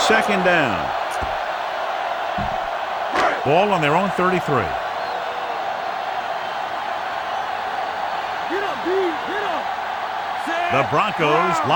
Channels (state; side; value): identical; both; correlation 1.00